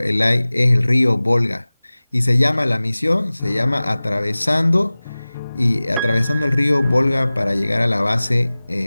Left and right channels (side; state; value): both; inverted; correlation -0.98